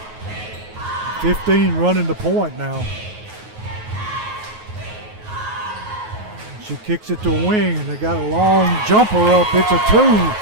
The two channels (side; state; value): left; late; 9.4 ms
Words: 15 running the point now. She kicks it to a wing, and they got a long jumper up. It's a